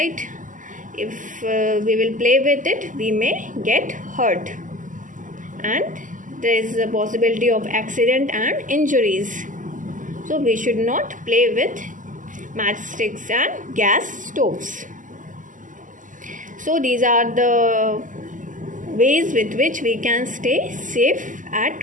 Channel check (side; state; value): left; late; 0.38 ms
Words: if we will play with it, we may get hurt and there is a possibility of accident and injuries. So we should not play with matchsticks and gas stoves. So these are the ways with which we can stay safe at